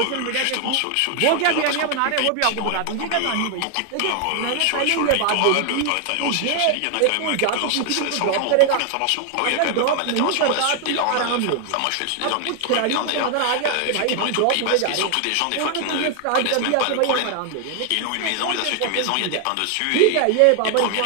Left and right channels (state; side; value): different; both; correlation 0.00